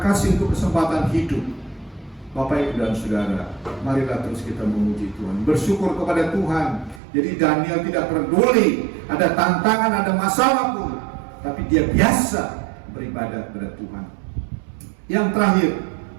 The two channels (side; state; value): left; drops out; at 7.0 s